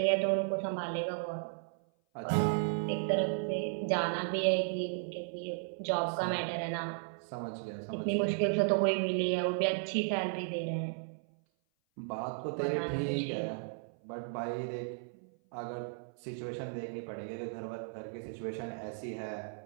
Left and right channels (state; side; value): silent; left; 55 dB below the other